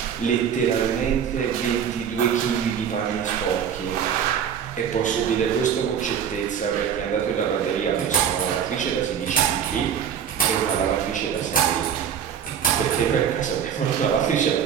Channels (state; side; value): quieter; left; 8.3 dB